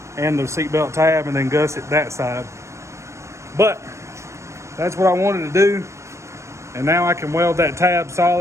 and the seatbelt tab, and then gusset that side. But that's what I wanted to do. And now I can weld that tab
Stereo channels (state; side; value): late; left; 0.14 ms